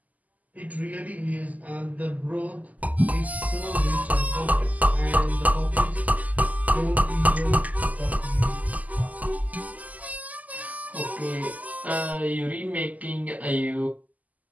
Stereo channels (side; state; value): left; late; 0.078 ms